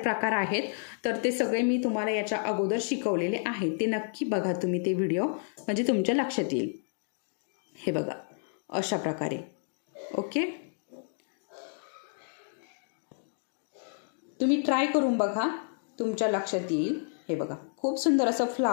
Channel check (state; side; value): silent; right; 58 dB below the other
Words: आहेत तर ते सगळे मी तुम्हाला याच्या अगोदर शिकवलेले आहे. ते नक्की बघा तुम्ही ते व्हिडिओ म्हणजे तुमच्या लक्षात येईल. हे बघा अशा प्रकारे. ओके, तुम्ही ट्राय करून बघा तुमच्या लक्षात येईल. हे बघा खूप सुंदर असं